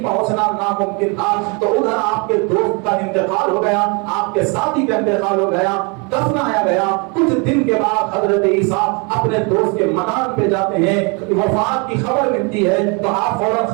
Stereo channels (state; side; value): quieter; left; 32.3 dB